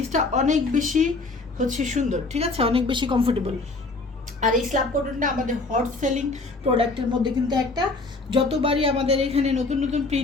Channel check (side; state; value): right; quieter; 3.5 dB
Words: অনেক বেশি হচ্ছে সুন্দর, ঠিক আছে, অনেক বেশি কমফোর্টেবল। আর এই স্ল্যাব কটনটা আমাদের হট সেলিং প্রোডাক্টের মধ্যে কিন্তু একটা, যতবারই আমাদের এখানে নতুন নতুন